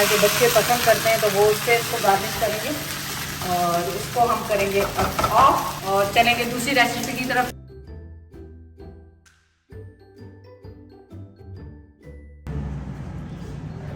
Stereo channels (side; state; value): both; identical; correlation 1.00